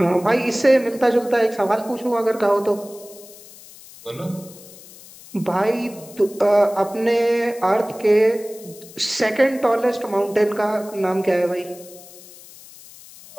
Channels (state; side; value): noise; left; hiss, 20 dB below the sound